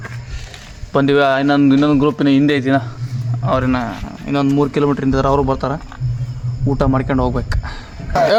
ಬಂದಿವಿ. ಇನ್ನೊಂದು ಗ್ರೂಪಿನ ಹಿಂದೆ ಐತಿನ, ಅವ್ರಿನ ಇನ್ನೊಂದು 3 ಕಿಲೋಮೀಟ್ರ್ ಹಿಂದಿದ್ರೆ ಅವರು ಬರ್ತಾರೆ. ಊಟ ಮಾಡ್ಕೊಂಡು ಹೋಗ್ಬೇಕು.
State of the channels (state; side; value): identical; both; correlation 1.00